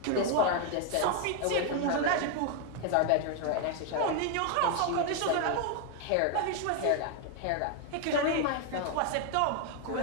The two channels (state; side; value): different; both; correlation 0.01